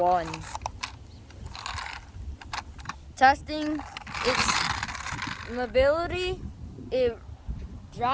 Testing its mobility. It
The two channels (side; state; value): both; identical; correlation 1.00